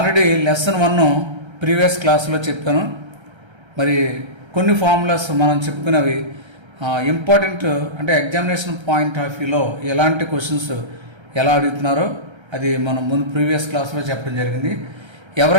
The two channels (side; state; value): left; late; 1.3 ms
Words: లెసన్ 1 ప్రీవియస్ క్లాస్లో చెప్పాను. మరి కొన్ని ఫార్ములాస్ మనం చెప్పుకున్నవి ఇంపార్టెంట్, అంటే ఎగ్జామినేషన్ పాయింట్ ఆఫ్ వ్యూలో ఎలాంటి క్వశ్చన్స్ ఎలా అడుగుతున్నారో అది మనం ముందు ప్రీవియస్ క్లాస్లో చెప్పడం జరిగింది.